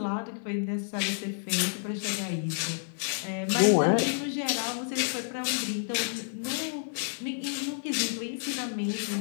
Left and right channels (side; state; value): right; silent; digital silence